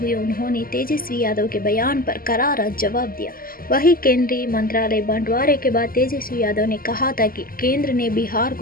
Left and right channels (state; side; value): late; right; 0.42 ms